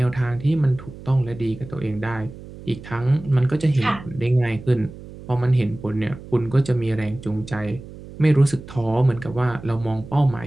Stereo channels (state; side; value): noise; right; hum, 16 dB below the sound